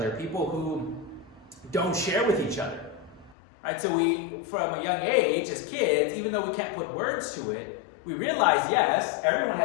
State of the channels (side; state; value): right; drops out; at 3.4 s